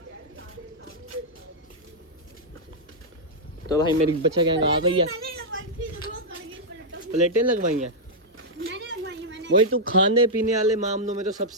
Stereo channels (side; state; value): both; normal; correlation -0.05